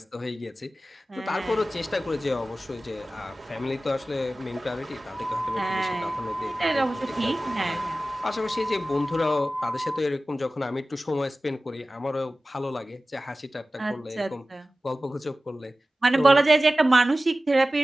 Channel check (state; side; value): normal; both; correlation 0.96